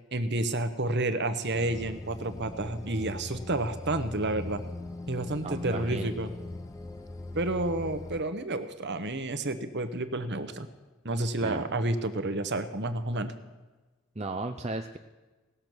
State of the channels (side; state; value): both; normal; correlation 0.31